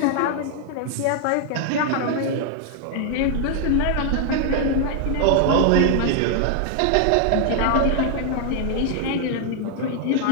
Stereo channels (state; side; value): different; both; correlation 0.00